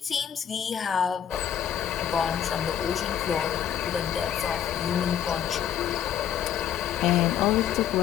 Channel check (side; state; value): right; quieter; 9.6 dB